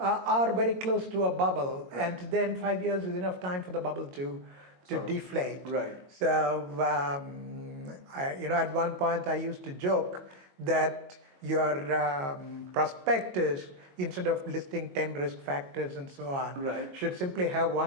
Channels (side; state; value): left; late; 22 ms